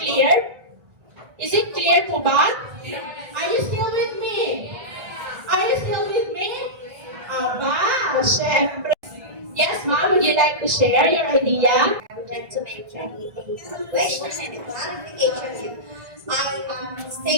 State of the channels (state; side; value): late; left; 1.7 ms